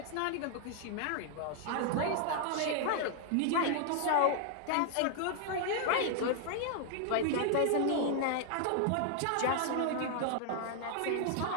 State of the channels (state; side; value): different; both; correlation 0.00